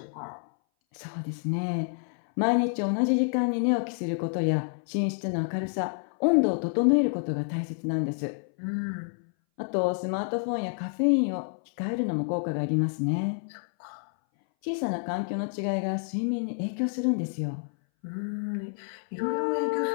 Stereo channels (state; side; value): silent; right; 59 dB below the other